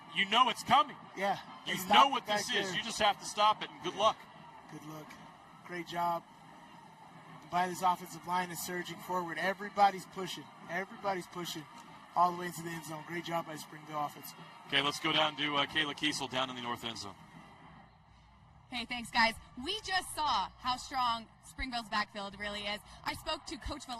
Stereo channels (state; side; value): identical; both; correlation 1.00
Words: know it's coming. Yeah. You know what this is. You just have to stop it, and good luck. Good luck. Great job by this offensive line is surging forward. Everybody's pushing. Everybody's pushing all the way into the end zone. Great job by Springville offense. Okay, let's go down to Kayla Kiesel down in the north end zone. Hey, thanks, guys. We just saw how strong Springville's backfield really is. I spoke to Coach